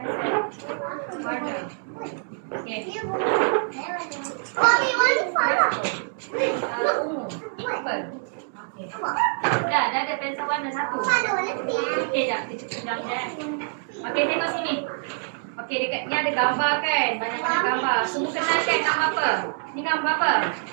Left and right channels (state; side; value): silent; left; 61 dB below the other